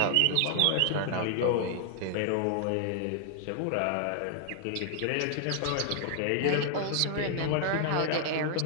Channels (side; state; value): both; different; correlation 0.00